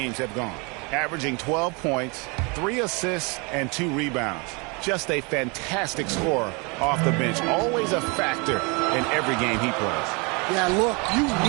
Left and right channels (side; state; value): left; quieter; 30.5 dB